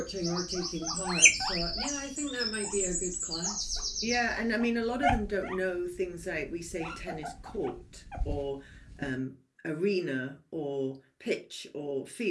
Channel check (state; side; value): identical; both; correlation 1.00